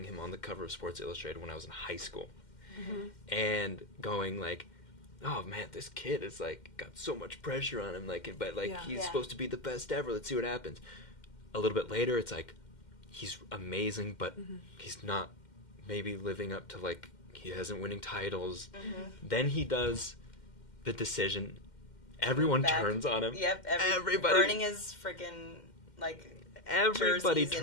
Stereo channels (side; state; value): right; late; 2.1 ms